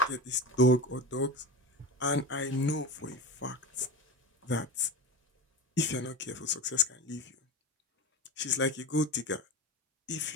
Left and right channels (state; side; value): normal; both; correlation 0.25